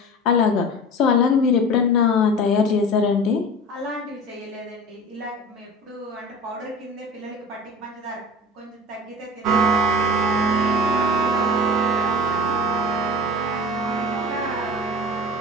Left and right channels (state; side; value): normal; both; correlation 0.35